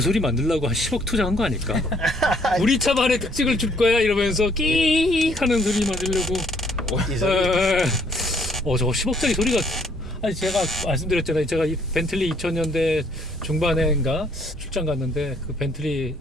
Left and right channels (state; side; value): normal; both; correlation 0.65